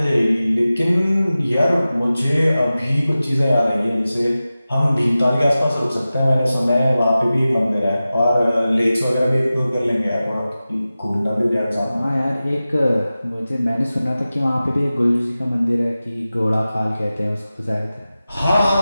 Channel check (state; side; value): inverted; both; correlation -0.95